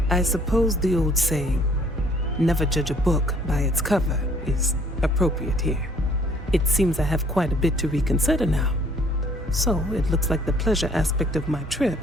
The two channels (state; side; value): normal; both; correlation 0.59